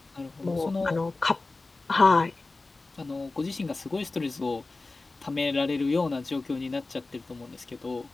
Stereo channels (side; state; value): right; quieter; 3.4 dB